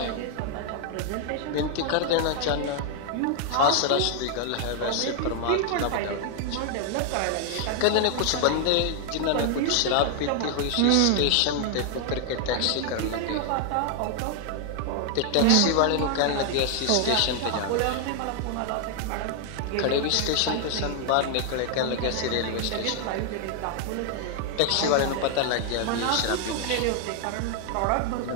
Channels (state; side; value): different; both; correlation 0.00